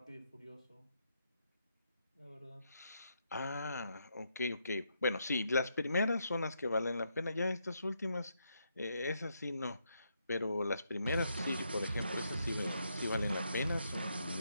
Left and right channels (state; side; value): inverted; both; correlation -0.79